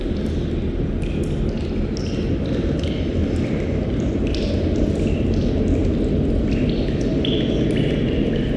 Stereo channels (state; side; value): identical; both; correlation 1.00